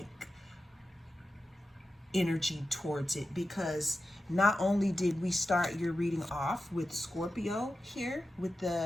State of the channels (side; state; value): both; normal; correlation 0.92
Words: energy towards it, because not only did we start your reading off with Scorpio here, with